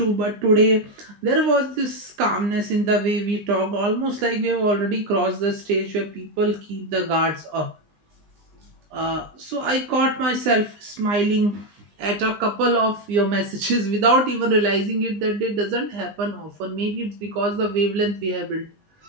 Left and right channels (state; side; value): late; left; 20 ms